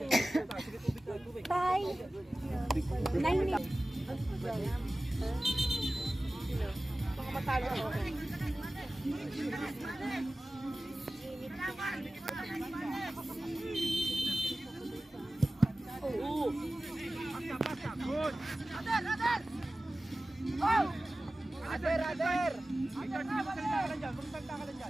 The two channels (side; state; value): both; normal; correlation 0.96